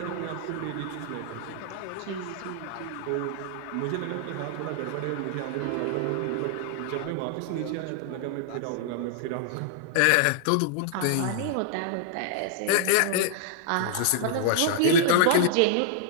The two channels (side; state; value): both; different; correlation -0.01